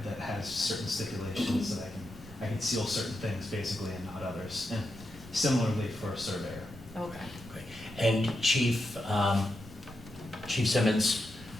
has certain stipulations that I can seal certain things basically and not others. And similarly for a surveyor. Okay. and Chief, Chief Simmons,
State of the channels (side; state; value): left; noise; hum, 26 dB below the sound